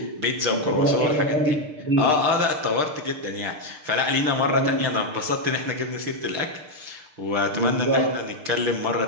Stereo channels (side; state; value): left; late; 6.6 ms